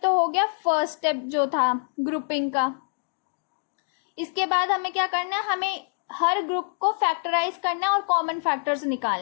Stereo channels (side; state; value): right; silent; digital silence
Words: तो हो गया फर्स्ट स्टेप जो था ग्रुपिंग का। इसके बाद हमें क्या करना है, हमें हर ग्रुप को फैक्टराइज करना है और कॉमन फैक्टर्स